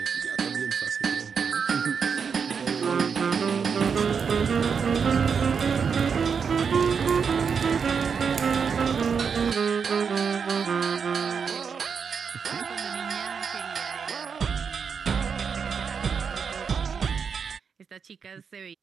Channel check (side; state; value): left; quieter; 6.2 dB